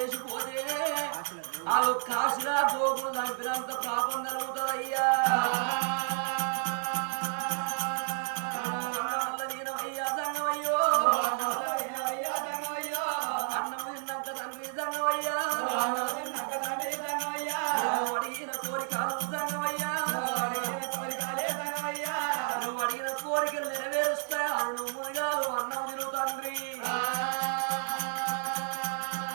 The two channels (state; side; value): silent; left; 57 dB below the other